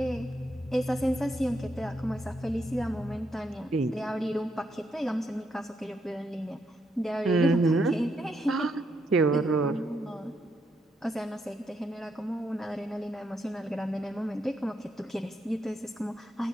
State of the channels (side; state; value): both; normal; correlation 0.78